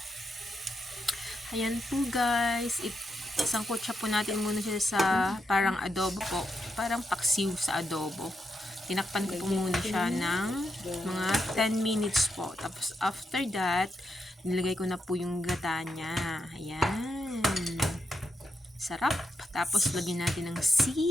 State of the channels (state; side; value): normal; both; correlation 0.82